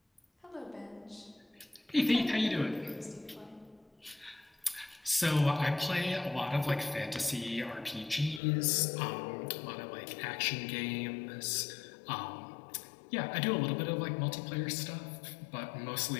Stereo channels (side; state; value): right; drops out; at 8.4 s